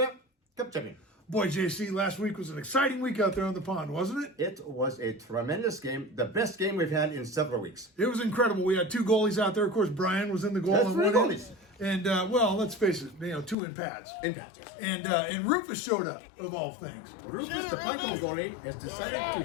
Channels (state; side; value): drops out; right; at 13.6 s